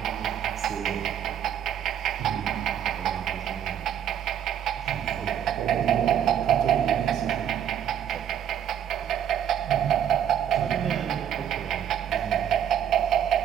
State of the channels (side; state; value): left; quieter; 9.8 dB